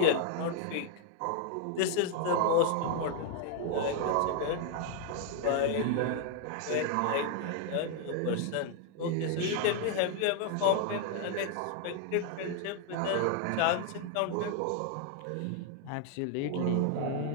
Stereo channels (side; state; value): both; different; correlation 0.00